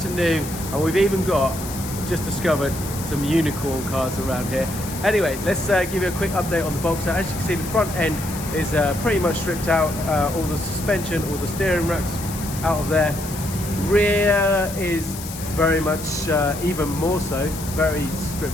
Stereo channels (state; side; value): noise; left; hiss, 11 dB below the sound